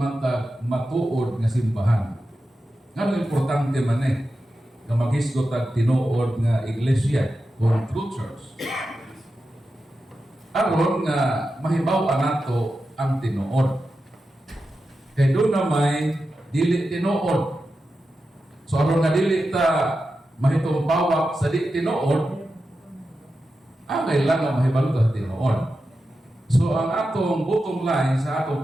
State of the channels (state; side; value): normal; both; correlation 0.91